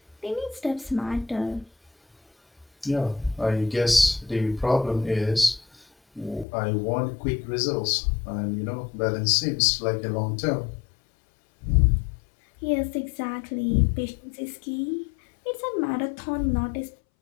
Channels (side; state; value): right; drops out; at 6.5 s